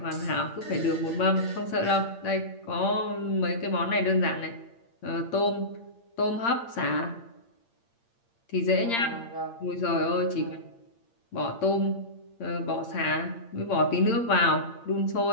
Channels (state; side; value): late; right; 8.7 ms